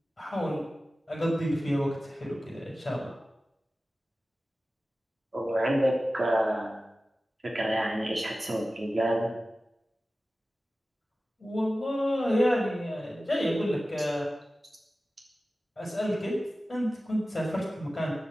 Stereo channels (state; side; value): normal; both; correlation 0.95